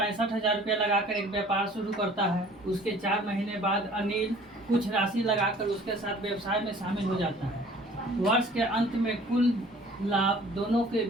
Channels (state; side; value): normal; both; correlation 0.51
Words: रुपया लगाकर एक व्यापार शुरू करता है। उसके 4 महीने बाद अनिल कुछ राशि लगाकर उसके साथ व्यवसाय में शामिल हो जाता है। वर्ष के अंत में कुल लाभ दोनों के